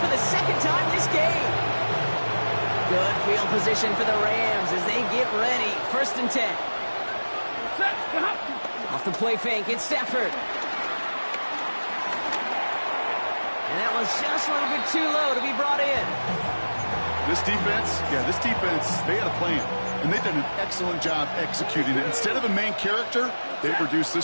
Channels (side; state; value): both; inverted; correlation -1.00